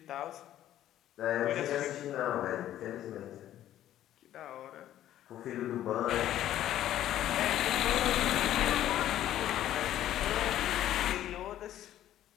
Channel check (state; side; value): quieter; right; 12.4 dB